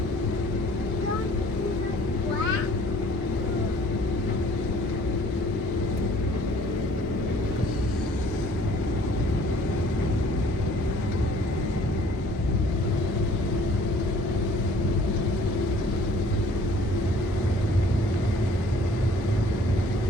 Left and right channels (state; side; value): normal; both; correlation 0.55